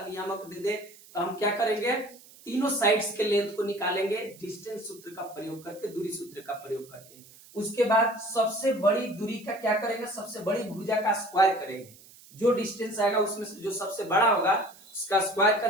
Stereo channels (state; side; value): noise; right; hiss, 23 dB below the sound